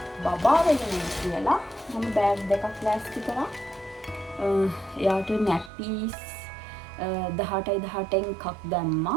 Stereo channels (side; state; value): left; drops out; at 5.7 s